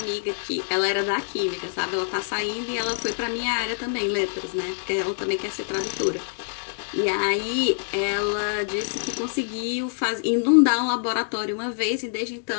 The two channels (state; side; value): silent; right; digital silence